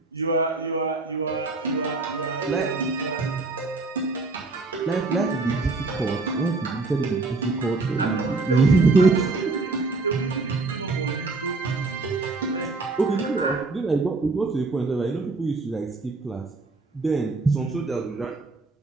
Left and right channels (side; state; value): left; quieter; 3.6 dB